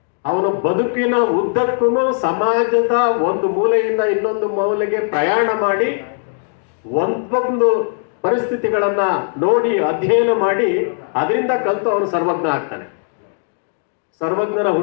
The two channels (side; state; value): right; silent; 67 dB below the other